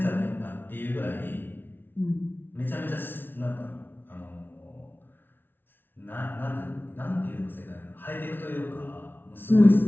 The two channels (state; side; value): late; right; 0.099 ms